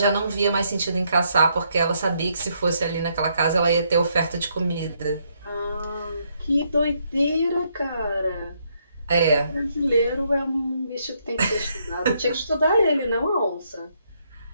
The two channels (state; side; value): inverted; both; correlation -0.74